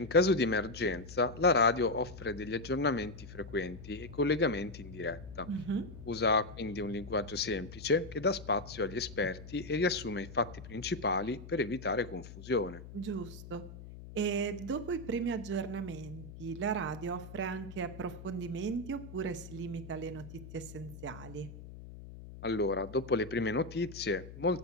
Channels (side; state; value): left; noise; hum, 14 dB below the sound